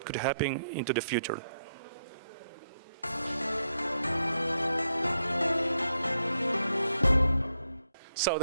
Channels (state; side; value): inverted; both; correlation -0.80